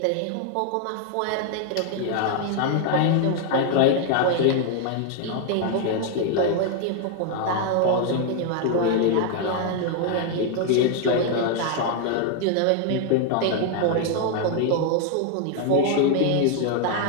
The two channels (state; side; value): different; both; correlation 0.00